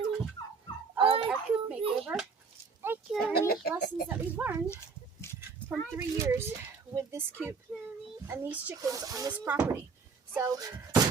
of our Coop makeover. And lessons that we've learned from 3 years with this Coop and these chickens on this property. So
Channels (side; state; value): left; quieter; 5.2 dB